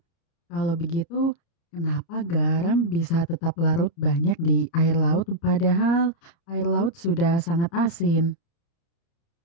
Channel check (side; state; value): right; late; 30 ms